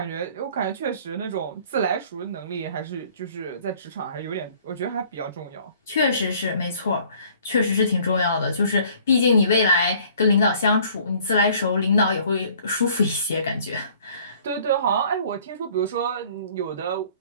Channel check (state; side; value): inverted; both; correlation -0.55